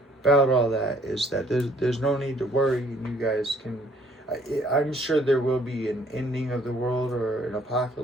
all that is that there's no need to worry, and you guys can. I'm sure there will be an ending of the world or an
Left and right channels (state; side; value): normal; both; correlation 0.60